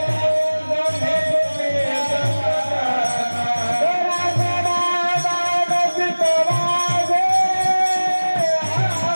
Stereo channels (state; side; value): inverted; both; correlation -1.00